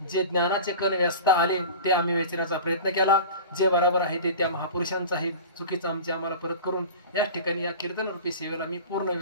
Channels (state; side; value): inverted; both; correlation -0.35